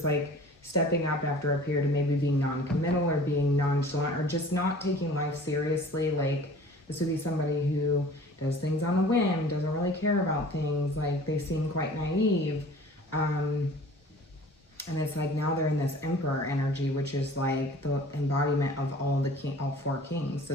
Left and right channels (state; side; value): normal; both; correlation 0.46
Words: like stepping up after a period of maybe being non-committal or being nonchalant or just not taking life seriously. Like, this would be somebody who does things on a whim, doesn't really care about things. Like, they seem quite naive. And it's like now they're in this emperor energy, which is like the embodiment of all four kings. So